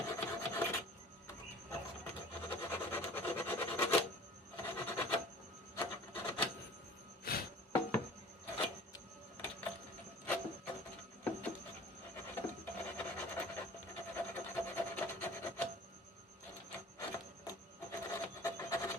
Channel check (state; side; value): normal; both; correlation 0.45